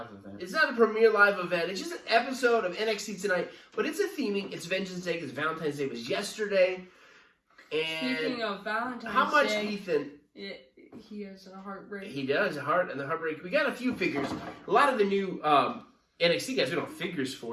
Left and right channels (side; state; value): both; identical; correlation 1.00